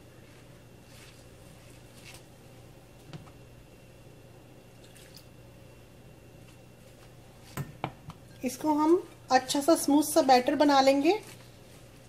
इसको हम अच्छा सा स्मूथ सा बैटर बना लेंगे।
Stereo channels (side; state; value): both; identical; correlation 1.00